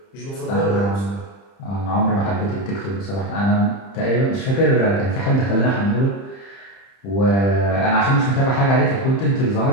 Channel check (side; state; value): right; late; 30 ms